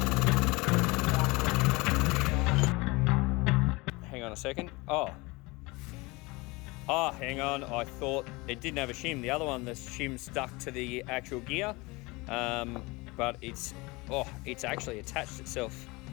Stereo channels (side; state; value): right; quieter; 24.2 dB